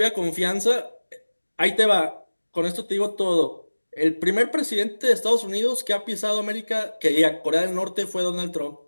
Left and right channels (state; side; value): inverted; both; correlation -1.00